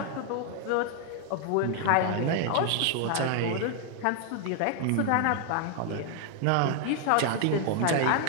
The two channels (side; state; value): both; different; correlation 0.00